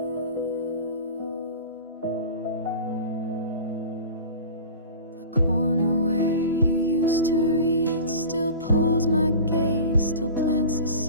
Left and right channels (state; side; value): inverted; both; correlation -0.36